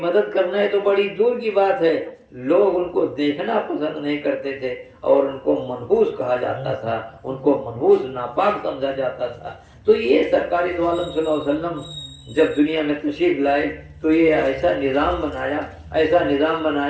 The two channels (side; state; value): both; identical; correlation 1.00